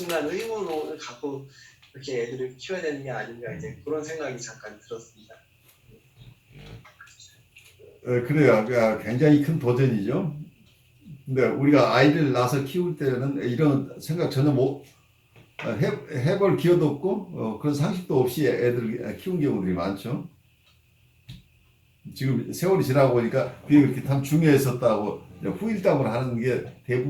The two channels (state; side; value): identical; both; correlation 1.00